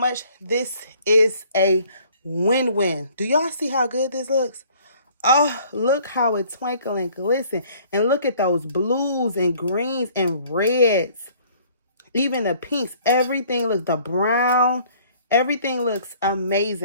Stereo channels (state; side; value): inverted; both; correlation -0.56